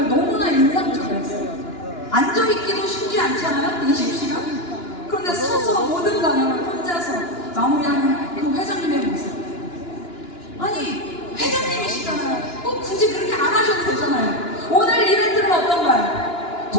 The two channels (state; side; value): late; right; 2.9 ms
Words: 너무나 인상적이었어요. 앉아있기도 쉽지 않잖아요, 20시간? 그런데 서서 모든 강연을 혼자서 마무리하는 그 회장님의 모습. 아니, 회장님이시잖아요. 꼭 굳이 그렇게 안 하셔도 되잖아요. 오늘 이벤트는 어떤가요?